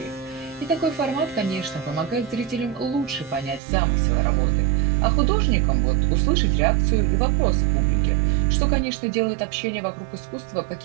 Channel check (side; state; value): left; drops out; at 3.6 s